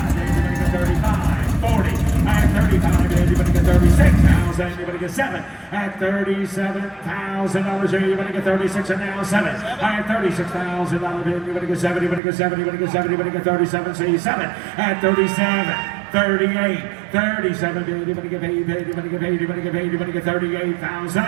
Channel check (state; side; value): drops out; left; at 12.2 s